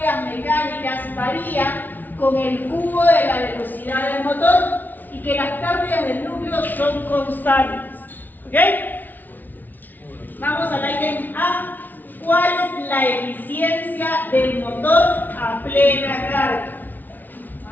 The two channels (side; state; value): right; late; 0.086 ms